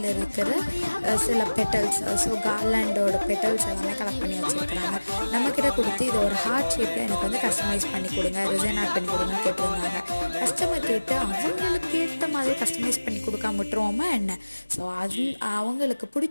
இருக்கிற சில பெட்டல்ஸ், ஸோ கார்லாண்டோட பெட்டல்ஸ் எல்லாமே கலெக்ட் பண்ணி வச்சுருக்குறாங்க. நம்மக்கிட்ட கொடுத்து இது ஒரு ஹார்ட் ஷேப்பில் எனக்கு வந்து கஸ்டமைஸ் பண்ணி கொடுங்க, ரிசைன் ஆட் பண்ணி கொடுங்கன்னு கேட்டிருந்தாங்க. கஸ்டமர் கேட்டு அவங்களுக்கு ஏற்ற மாதிரி கஸ்டமைஸ் பண்ணி கொடுக்காம விட்டுருவோமா என்ன? ஸோ அது அவங்களுக்கு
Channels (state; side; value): inverted; both; correlation -1.00